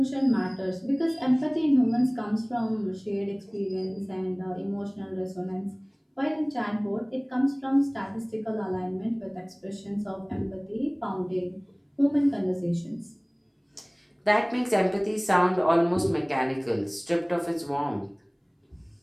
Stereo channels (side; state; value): both; identical; correlation 1.00